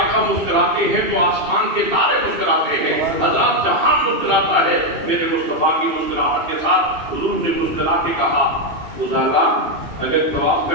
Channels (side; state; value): left; late; 2.3 ms